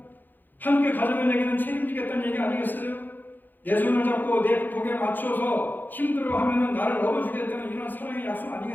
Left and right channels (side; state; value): right; late; 0.088 ms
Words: 함께 가져가는 얘기는 책임지겠다는 얘기 아니겠어요? 내 손을 잡고 내 복에 맞춰서 힘들어하면 나를 업어주겠다는 이런 사랑의 약속